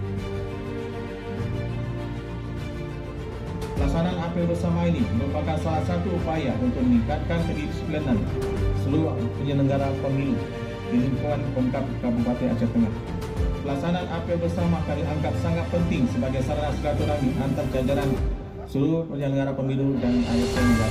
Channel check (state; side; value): identical; both; correlation 1.00